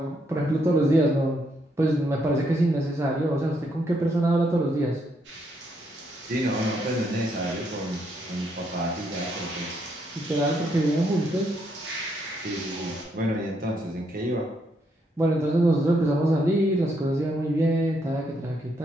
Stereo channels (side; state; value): both; normal; correlation 0.75